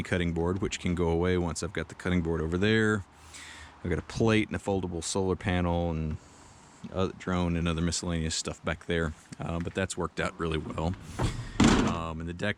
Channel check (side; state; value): both; identical; correlation 1.00